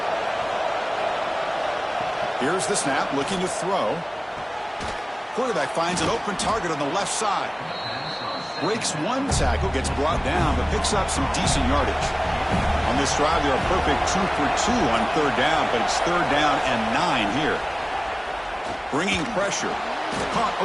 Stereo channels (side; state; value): both; identical; correlation 1.00